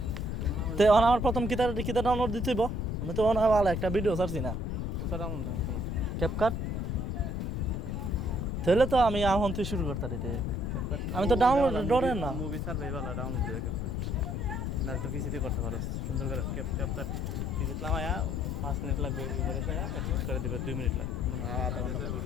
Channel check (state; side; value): noise; left; rumble, 2 dB below the sound